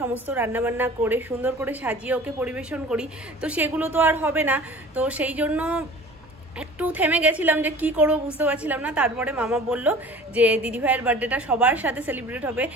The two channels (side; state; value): both; normal; correlation 0.44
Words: সমস্ত রান্নাবান্না করে সুন্দর করে সাজিয়ে ওকে পরিবেশন করি, তো সেগুলো তো আর হবে না। তো সেই জন্য একটু থেমে গেছিলাম যে কি করবো বুঝতে পারছিলাম না। তারপরে মামা বলল যে দিদিভাইয়ের বার্থডেটা সবার সাথে সেলিব্রেট হবে।